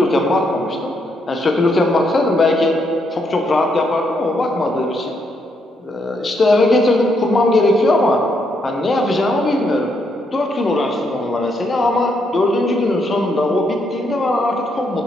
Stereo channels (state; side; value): normal; both; correlation 0.77